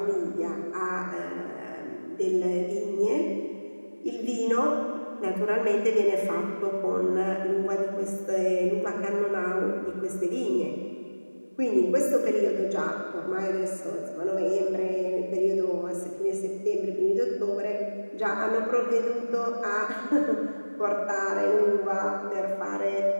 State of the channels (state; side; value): inverted; both; correlation -1.00